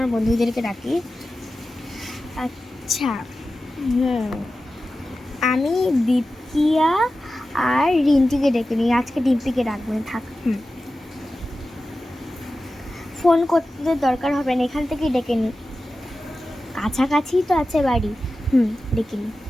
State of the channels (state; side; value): normal; both; correlation 0.94